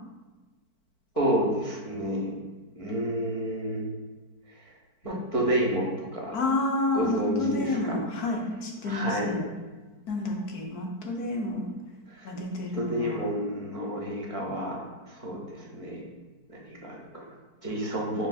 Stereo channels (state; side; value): late; right; 4.5 ms